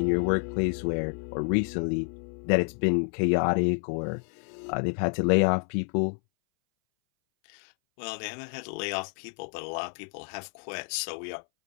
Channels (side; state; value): right; silent; 59 dB below the other